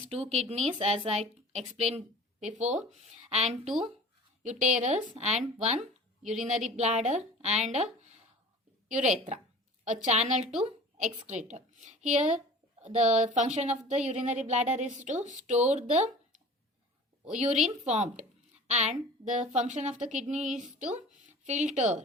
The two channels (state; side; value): normal; both; correlation 0.42